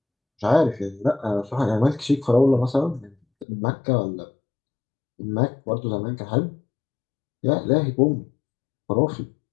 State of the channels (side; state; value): right; drops out; at 3.5 s